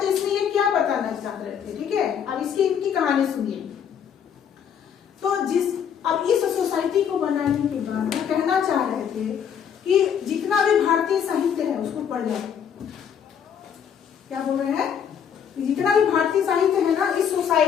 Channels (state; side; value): quieter; right; 8.0 dB